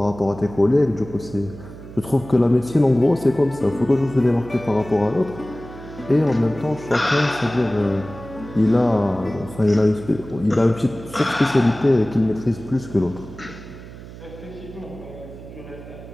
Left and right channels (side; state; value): right; noise; hum, 15 dB below the sound